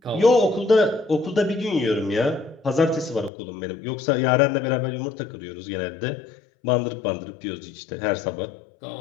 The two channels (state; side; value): drops out; right; at 3.3 s